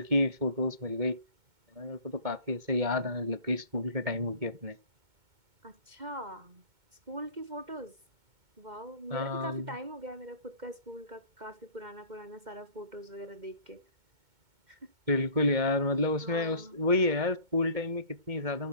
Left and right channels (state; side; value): late; left; 2.2 ms